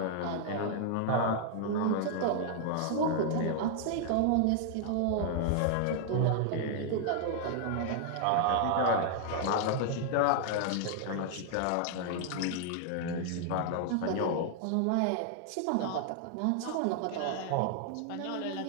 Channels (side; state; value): both; different; correlation 0.00